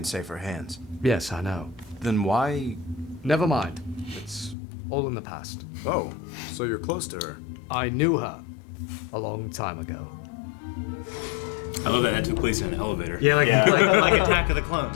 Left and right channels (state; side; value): drops out; right; at 4.5 s